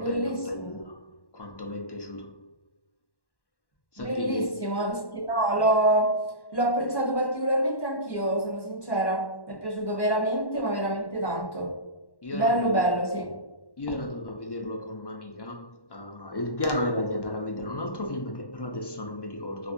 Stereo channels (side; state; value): right; late; 1.1 ms